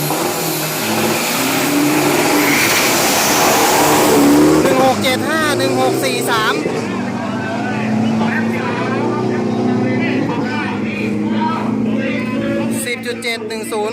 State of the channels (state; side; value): identical; both; correlation 1.00